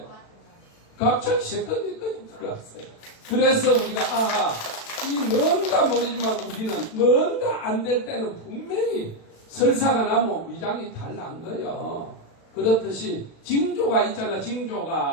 갑자기 세컨니까지 들어왔어요. 그래서 우리가 이 뭔가 모르지만 우리는 뭔가 안 될 때는 분명히 설사가 나면 위장이 달란 거예요. 그렇듯이 징조가 있잖아.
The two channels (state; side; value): late; right; 36 ms